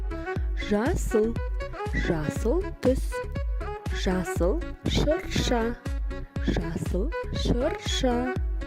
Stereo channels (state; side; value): identical; both; correlation 1.00